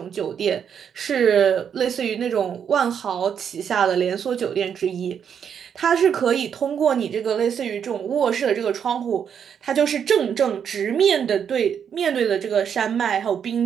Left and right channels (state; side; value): quieter; left; 7.9 dB